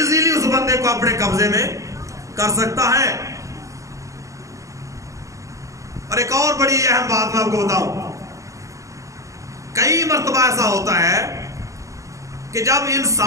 اس بندے کو اپنے قبضے میں کر سکتا ہے۔ اور ایک اور بڑی اہم بات میں آپ کو بتاؤں، کئی مرتبہ ایسا ہوتا ہے کہ جب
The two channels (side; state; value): left; late; 0.15 ms